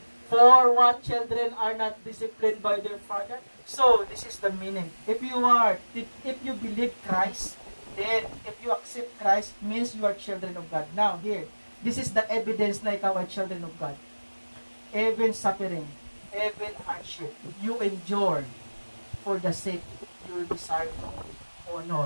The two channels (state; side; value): inverted; both; correlation -1.00